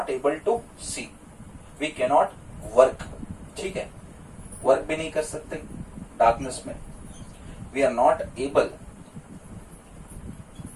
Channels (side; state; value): both; identical; correlation 1.00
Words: able to see. We cannot work. ठीक है, वर्क भी नहीं कर सकते डार्कनेस में. We are not able